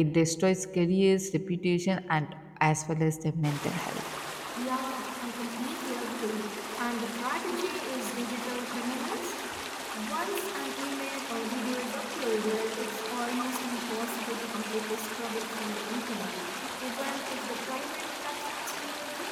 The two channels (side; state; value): both; identical; correlation 1.00